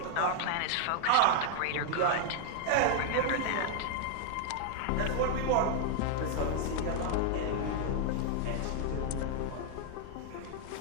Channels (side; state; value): both; different; correlation 0.00